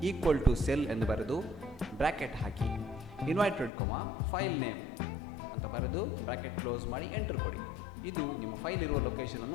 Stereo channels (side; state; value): right; drops out; at 3.7 s